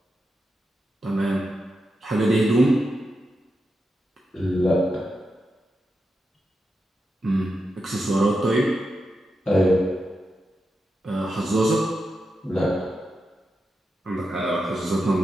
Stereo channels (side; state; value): both; normal; correlation 0.88